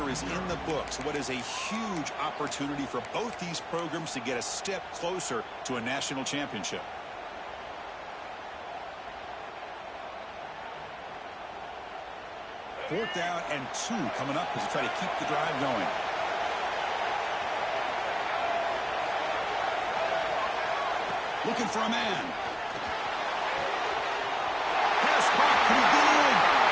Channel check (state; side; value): identical; both; correlation 1.00